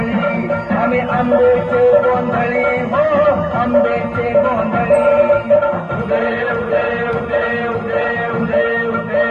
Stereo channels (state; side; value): identical; both; correlation 1.00